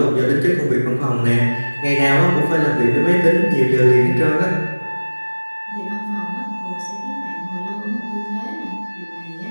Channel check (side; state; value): both; inverted; correlation -1.00